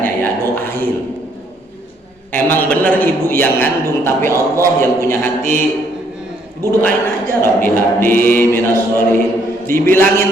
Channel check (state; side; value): normal; both; correlation 0.68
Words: ya? Doain. Emang bener ibu yang ngandung, tapi Allah yang punya hati. Ibu doain aja, Rabbi habli minas solihin.